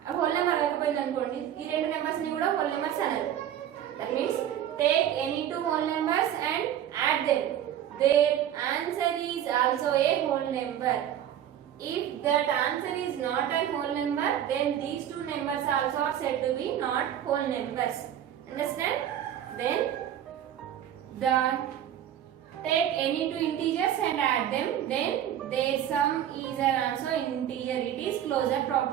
whole number అవ్వకపోయింది అనుకోండి, ఈ రెండు numbers ని కూడా whole numbers అనాలి. That means take any two whole numbers and add them. There answer is also a whole number. If that answer is not a whole number, then these two numbers also are said to be not whole numbers. Understand? Then take any two integers and add them. Then their sum is also integer. It is closure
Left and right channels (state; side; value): quieter; left; 10.6 dB